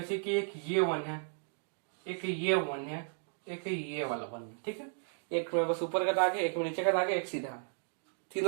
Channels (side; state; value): left; silent; 55 dB below the other